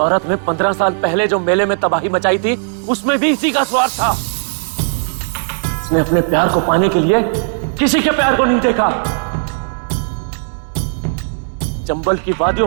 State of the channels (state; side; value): silent; left; digital silence